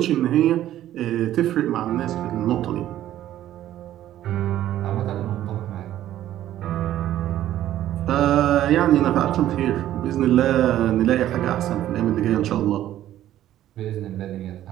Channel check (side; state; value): left; quieter; 12.8 dB